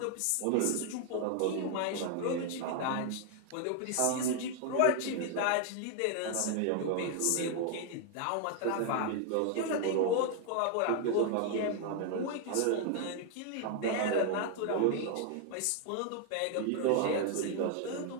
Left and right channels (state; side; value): different; both; correlation 0.00